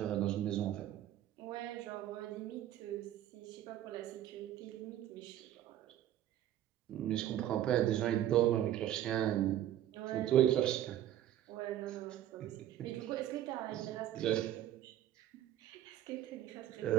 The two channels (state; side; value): quieter; left; 12.2 dB